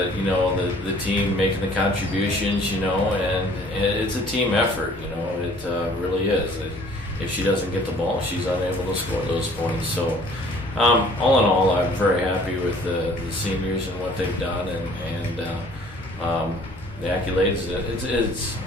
the team making the contributions, and it's a team effort. It really is. If she doesn't get the ball, she's unable to score those points. So all in all, I'm very happy with the seniors and what they've done, and the accolades. It's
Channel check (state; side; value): normal; both; correlation 0.54